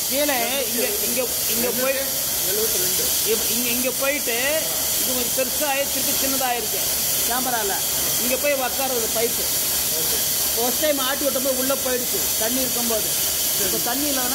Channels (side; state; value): both; identical; correlation 1.00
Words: கீழே இங்கே போய் 72 இங்கே போயிட்டு இது கொஞ்சம் பெருசாக திருப்பி சின்னதாகிருக்கு கேமராவில் இங்கே போய் உக்காருது பைப்பு ஃபர்ஸ்ட் டைம் ஆட்டி விட்டபோது உள்ளே போயிடுச்சு தண்ணி இருக்கும்போது இப்போ தண்ணி